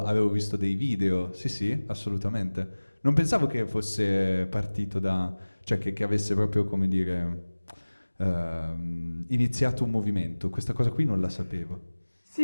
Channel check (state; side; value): inverted; both; correlation -1.00